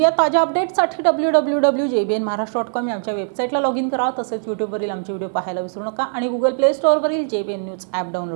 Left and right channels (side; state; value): left; silent; digital silence